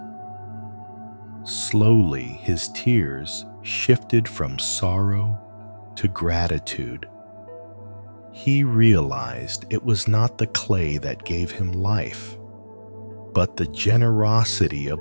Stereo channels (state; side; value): inverted; both; correlation -1.00